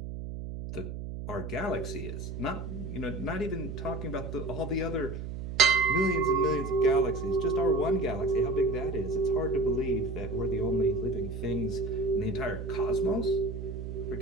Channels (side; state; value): right; noise; hum, 7 dB below the sound